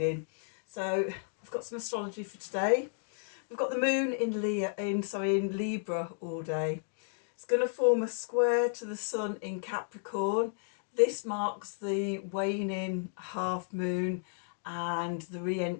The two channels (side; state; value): right; silent; digital silence